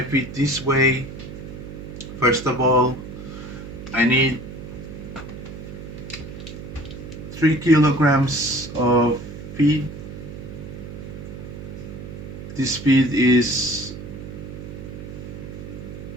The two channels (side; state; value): right; noise; hum, 11 dB below the sound